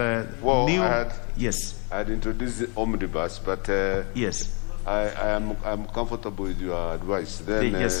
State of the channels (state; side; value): quieter; right; 34.1 dB